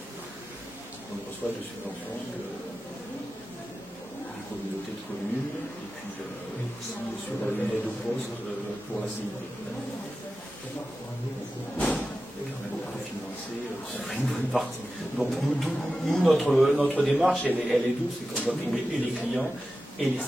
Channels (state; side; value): normal; both; correlation 0.93